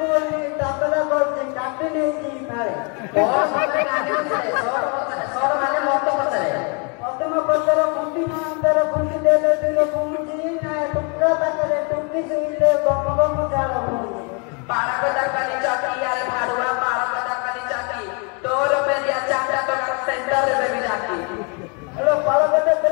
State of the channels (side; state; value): right; quieter; 35.2 dB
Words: ने तबला करते काटे नहीं जी फाड़े बहुत सारे काटे से सौर माने मत पचरे मत पचरे कुंडी अंदर कुंडी देले दिलो कुंडी ना टुकड़ा तकरे टुकड़ी से ले गम जाला पारा को दरकाली चौकी यार भाड़ुआ पारा को दरकाली चौकी 2 रुपए दिया चाटा तो सेंटर में भी जाती हेलो पारा को